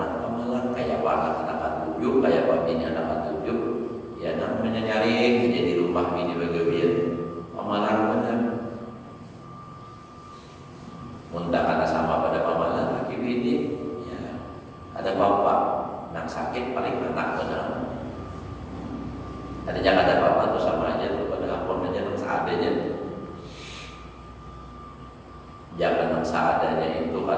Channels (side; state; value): both; identical; correlation 1.00